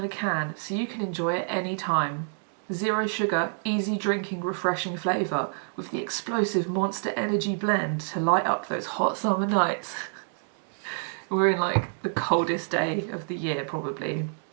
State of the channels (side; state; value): left; silent; digital silence